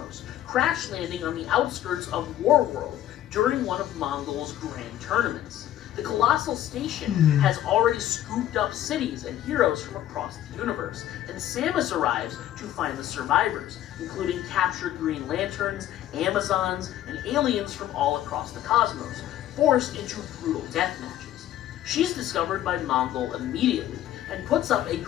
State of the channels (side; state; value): right; quieter; 12.6 dB